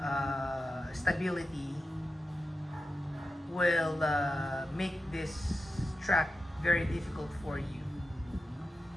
stability will make this track very difficult for you.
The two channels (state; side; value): normal; both; correlation 0.90